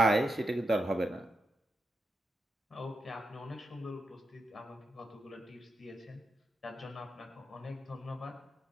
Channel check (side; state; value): both; normal; correlation 0.85